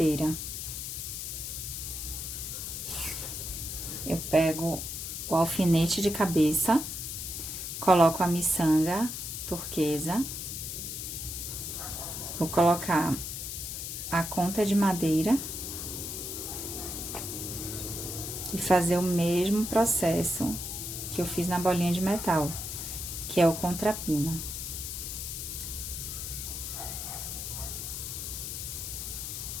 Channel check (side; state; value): left; noise; hiss, 5 dB below the sound